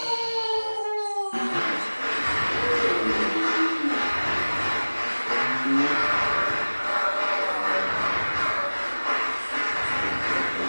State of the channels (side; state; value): both; inverted; correlation -1.00